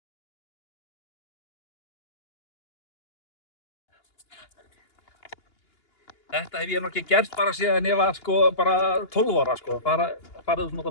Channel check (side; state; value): right; late; 2.8 ms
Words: Þetta hef ég nú ekki gert bara síðan ég var sko bara 12 ára sko, farið svona út